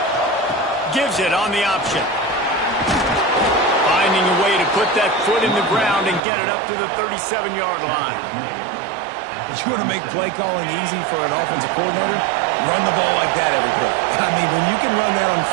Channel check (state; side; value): drops out; left; at 6.2 s